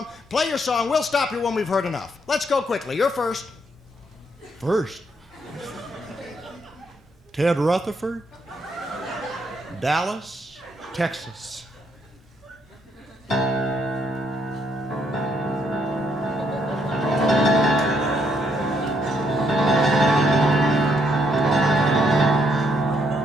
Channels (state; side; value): normal; both; correlation 0.73